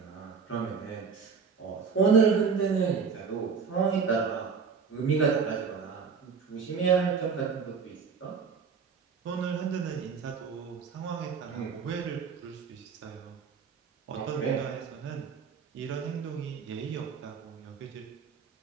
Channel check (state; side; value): quieter; left; 5.7 dB